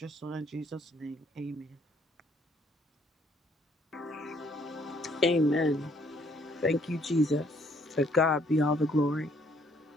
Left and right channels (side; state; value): both; normal; correlation 0.65